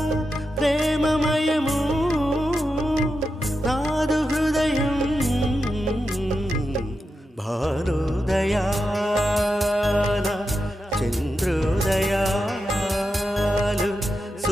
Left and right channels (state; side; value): normal; both; correlation 0.88